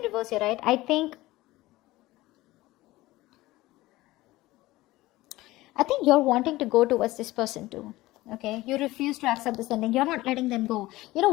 reverse here, right? I think you're wanting to go towards this person too. Okay, you refuse to accept this ending. You're not letting them go. You know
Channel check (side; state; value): right; quieter; 18.4 dB